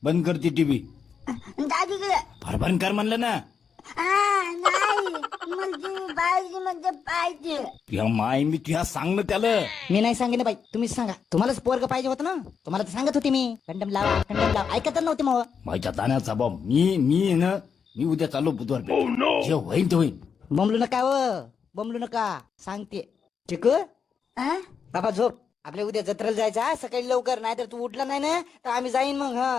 बंद करते टीव्ही. दादीकडे फार बंद कर म्हणलं ना. नाही म्हणजे पाहिजे म्हणजे पाहिजे. तुझ्या माय मी तुझ्या सांग ना त्याला. मी नाही सांगे ना बाई, तुम्हीच सांगा. तुम्हालाच पोरग पाहिजे होतं ना. तुम्हाला तर सांगत होते मी कंडम लावा कंडम लावा. ऐकत नव्हते मग. माझ्या ताण्याचा बाब मी ना मी उद्या चाललो बुधवार पेठ. जे होईन ते होईन. बोंबलू नका व बोंबलू नका सांगते. चिकू हा? बाबा झोप. आपल्या उद्या जत्रेला जायचं हा, सकाळी लवकर. नाही तर तू उठला नाही ना तर आम्ही जाईन मग.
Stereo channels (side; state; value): right; quieter; 6.5 dB